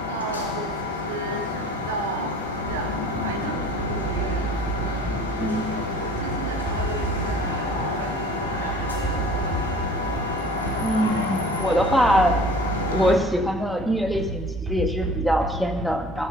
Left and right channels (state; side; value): normal; both; correlation 0.46